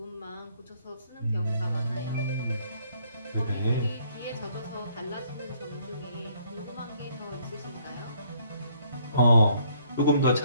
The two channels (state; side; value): inverted; both; correlation -0.65